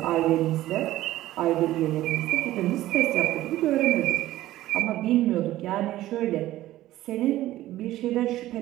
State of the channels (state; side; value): quieter; left; 15.2 dB